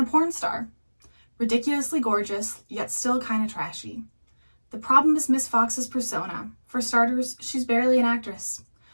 porn star. Ridiculously gorgeous, yet still kinda trashy. The problem is Miss Fox's persona. For starters, she's barely an actress.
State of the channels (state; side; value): inverted; both; correlation -1.00